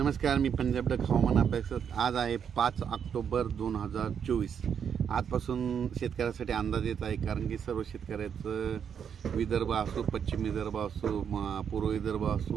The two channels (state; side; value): quieter; left; 7.7 dB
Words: मी पंजाब डक हवामान अभ्यासक। आज आहे 5 ऑक्टोबर 2024। आजपासून शेतकऱ्यासाठी अंदाज येत आहे, कारण की सर्व शेतकऱ्याचं विदर्भ असो, पश्चिम विदर्भ असो, पूर्व विदर्भ